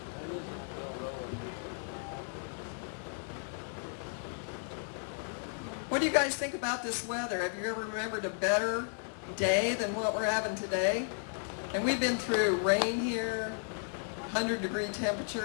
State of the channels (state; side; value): silent; right; 55 dB below the other